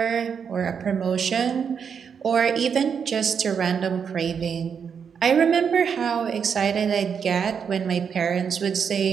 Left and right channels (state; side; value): quieter; left; 6.9 dB